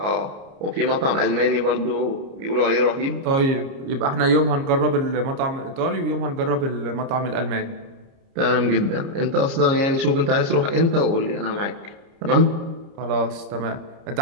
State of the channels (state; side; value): late; left; 30 ms